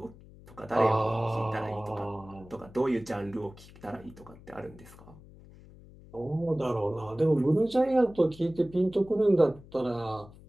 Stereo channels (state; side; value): noise; left; hum, 21 dB below the sound